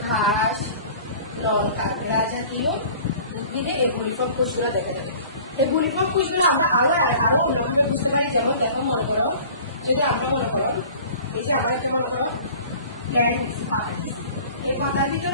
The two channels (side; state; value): both; inverted; correlation -0.45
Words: ঘাস, লঙ্কা, ঘাস জাতীয় উদ্ভিদে এই বুলিফর্ম কোষগুলো দেখা যাবে। এই বুলিফর্ম কোষগুলো আমরা আরো অন্যভাবে বুঝতে পারি। যেমন দেখো মনে করো যদি আমরা মনে করো এই যে আমরা একটা মনে করো প্ল্যান্ট নিচ্ছি, পাতা নিচ্ছি, এই পাতার